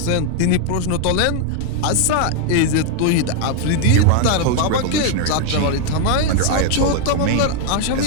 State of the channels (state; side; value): different; both; correlation 0.00